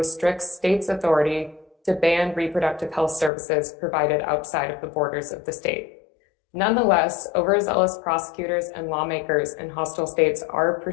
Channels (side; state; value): right; drops out; at 3.3 s